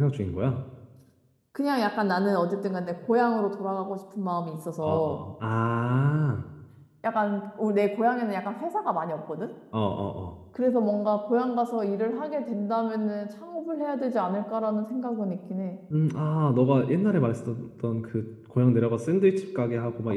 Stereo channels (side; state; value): both; identical; correlation 1.00